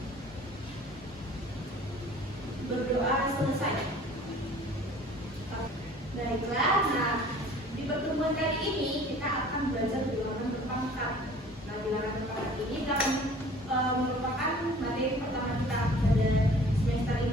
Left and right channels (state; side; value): normal; both; correlation 0.49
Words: Berdoa selesai. Baiklah, nah di pertemuan kali ini kita akan belajar bilangan berpangkat. Nah, bilangan berpangkat ini merupakan materi pertama kita pada semester